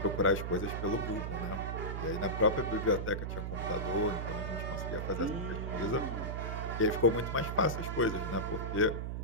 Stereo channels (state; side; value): noise; right; hum, 3 dB below the sound